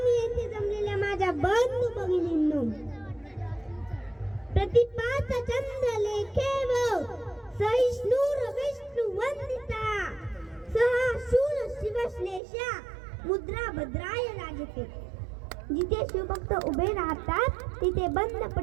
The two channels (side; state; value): left; drops out; at 12.4 s